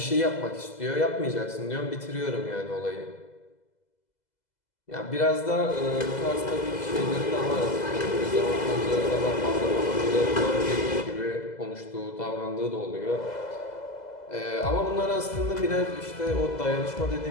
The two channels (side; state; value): right; late; 2.0 ms